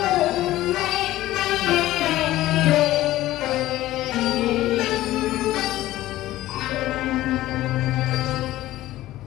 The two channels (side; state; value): right; quieter; 15.6 dB